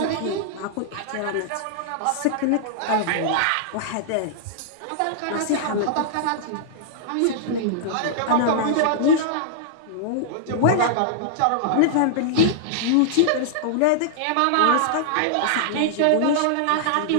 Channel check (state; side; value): different; both; correlation -0.01